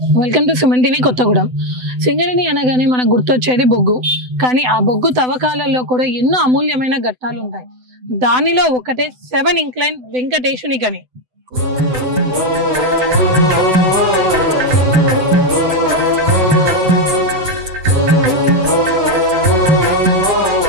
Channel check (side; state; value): left; late; 7.9 ms